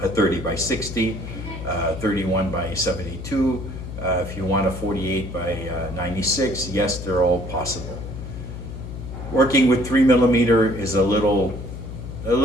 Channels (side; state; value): left; noise; hum, 9 dB below the sound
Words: a 30x60, 31x72, if you want a 48x96, yes, they're all possible. Working with 3 millimeter is a little